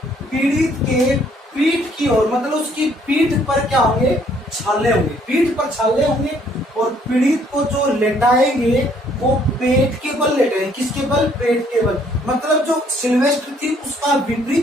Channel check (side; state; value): both; normal; correlation 0.64